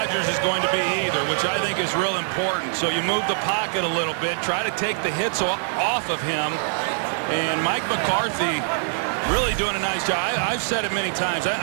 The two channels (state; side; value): silent; left; digital silence